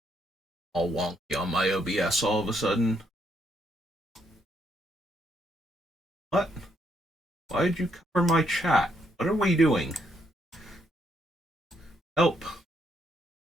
all wonky on my OBS all of a sudden. What? Why did you cover my chat? What are we doing? Help.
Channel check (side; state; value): both; normal; correlation 0.74